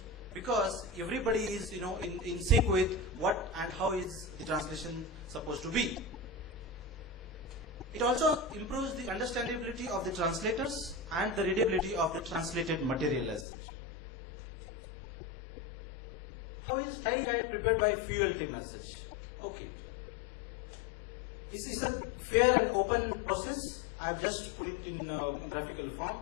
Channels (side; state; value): right; drops out; at 13.5 s